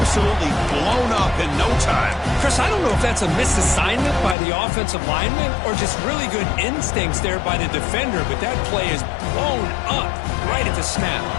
blown up in no time. Chris, I don't know if that's a misassignment by the offensive lineman or just really good instincts there by the defender, but that play is blown up right at the snap.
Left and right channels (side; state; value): right; drops out; at 4.4 s